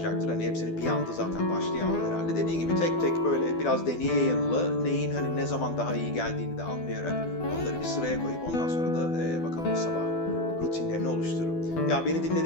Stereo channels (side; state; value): right; late; 12 ms